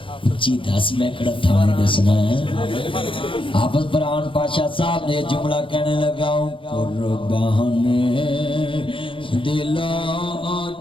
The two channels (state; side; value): late; right; 0.25 ms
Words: جی 10 میں کڑا تھا نہیں دسنا ہے. حافظ فرحان پاشا صاحب نے جملہ کہنے لگا ہوں قربان دل و